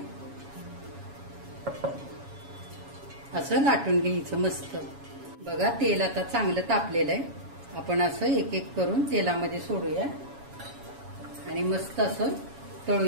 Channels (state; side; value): late; left; 7.2 ms